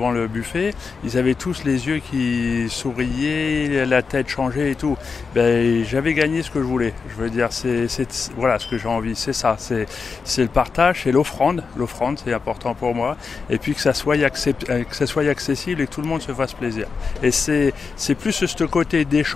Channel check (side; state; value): right; quieter; 5.1 dB